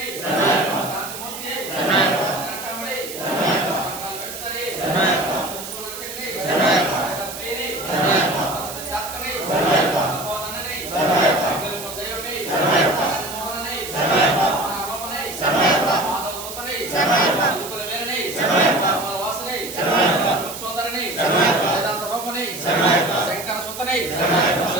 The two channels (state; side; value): noise; right; hiss, 10 dB below the sound